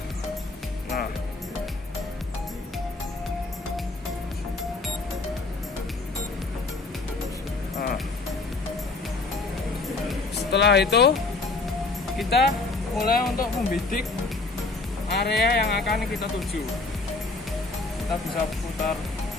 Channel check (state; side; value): quieter; right; 3.5 dB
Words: Setelah itu kita mulai untuk membidik area yang akan kita tuju. Kita bisa putar.